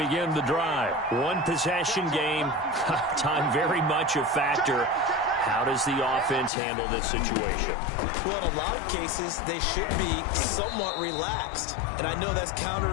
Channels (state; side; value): drops out; right; at 6.5 s